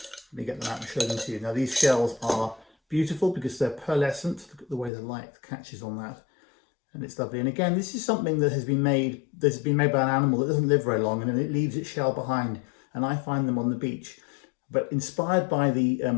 Let me get them out and show them to you. Now these shells are beautiful because they're pearlescent. Look at the way the light catches on that. And it's lovely. And again, this is something that has been made by an animal that doesn't live very long, and then it leaves its shell behind. And I find them on the beach. But inspired by the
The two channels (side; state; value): right; drops out; at 4.9 s